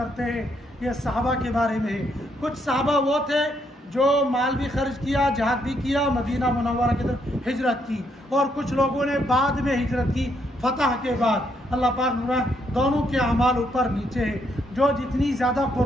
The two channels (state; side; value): normal; both; correlation 0.74